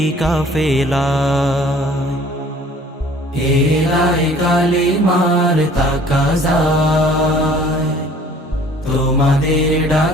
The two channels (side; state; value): both; normal; correlation 0.53